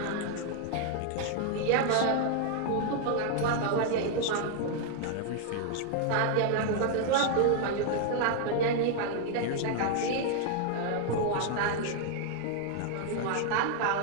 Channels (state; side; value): different; both; correlation 0.00